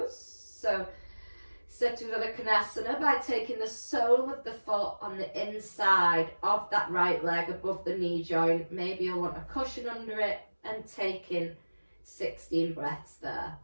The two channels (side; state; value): both; inverted; correlation -1.00